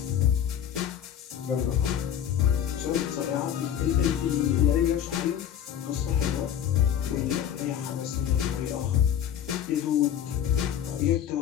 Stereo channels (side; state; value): right; quieter; 9.8 dB